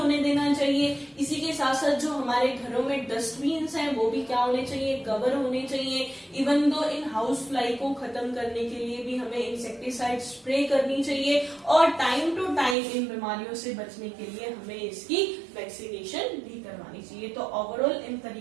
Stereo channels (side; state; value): left; drops out; at 12.8 s